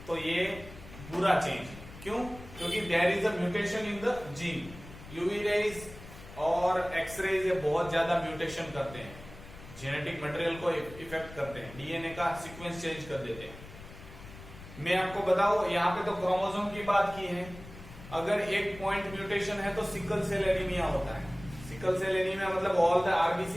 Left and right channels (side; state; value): left; noise; rumble, 16 dB below the sound